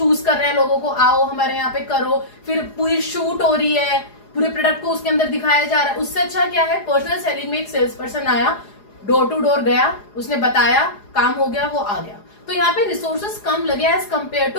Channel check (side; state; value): right; late; 4.8 ms